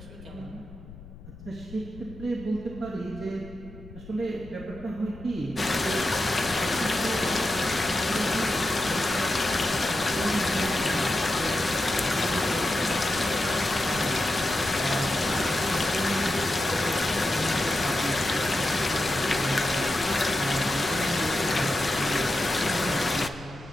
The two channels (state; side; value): noise; left; rumble, 18 dB below the sound